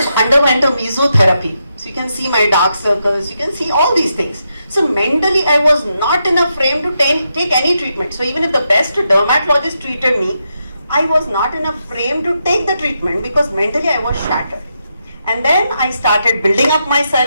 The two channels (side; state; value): both; inverted; correlation -0.83